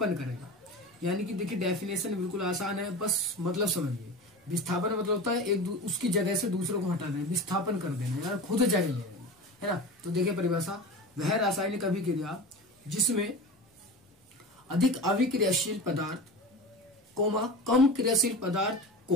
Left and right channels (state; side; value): normal; both; correlation 0.30